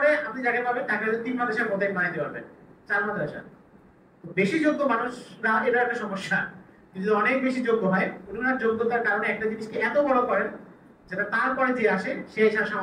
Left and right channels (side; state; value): both; identical; correlation 1.00